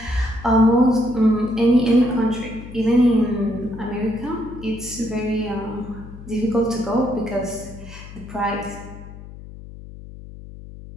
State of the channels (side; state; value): left; noise; hum, 15 dB below the sound